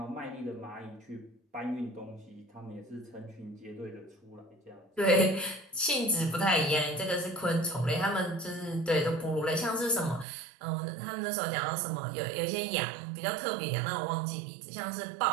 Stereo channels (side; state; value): left; drops out; at 10.2 s